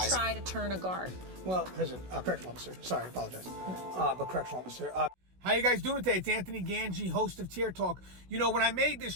do they try to turn a guard? Well, correctional officer. Sorry, I apologize. But correctional officer. How you guys doing today? It's Anthony Gangi, host of Tier Talk. You know, when I made this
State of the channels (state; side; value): late; left; 16 ms